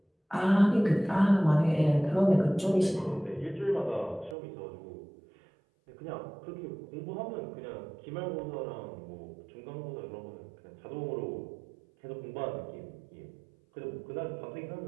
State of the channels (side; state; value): left; drops out; at 4.4 s